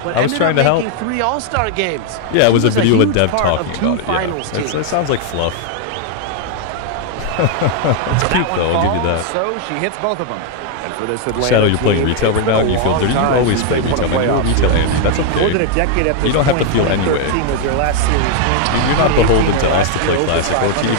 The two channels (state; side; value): different; both; correlation 0.00